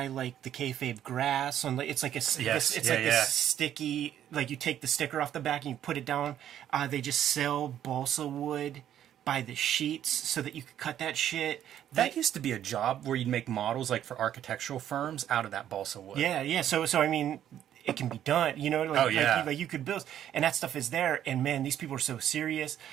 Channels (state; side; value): quieter; left; 10.8 dB